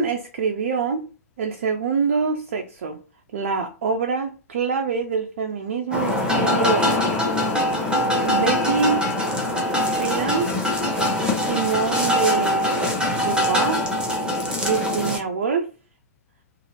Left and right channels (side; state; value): both; normal; correlation -0.03